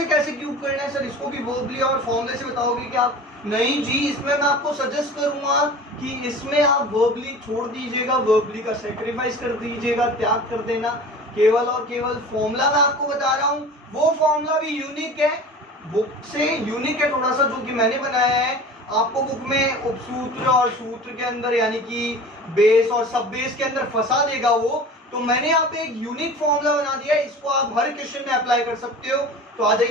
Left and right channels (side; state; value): both; normal; correlation 0.38